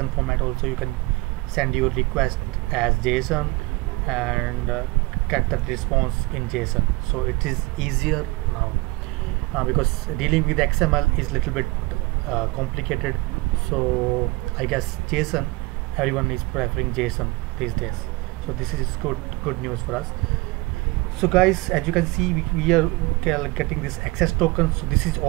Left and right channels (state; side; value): quieter; left; 22.9 dB